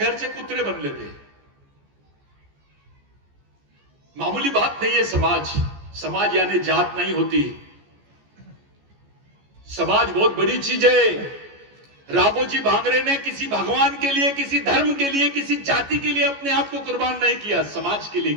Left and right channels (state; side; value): late; left; 14 ms